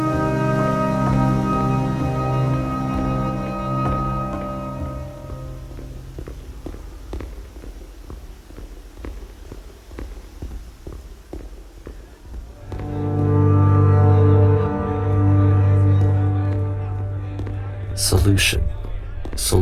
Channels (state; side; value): identical; both; correlation 1.00